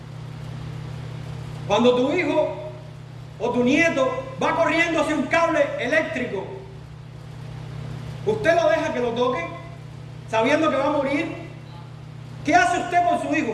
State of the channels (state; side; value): identical; both; correlation 1.00